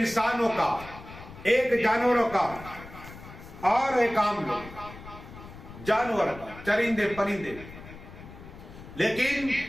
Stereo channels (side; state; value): left; noise; rumble, 16 dB below the sound